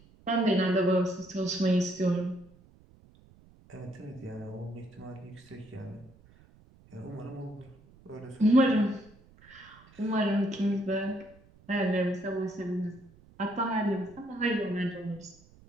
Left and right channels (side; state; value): right; noise; rumble, 26 dB below the sound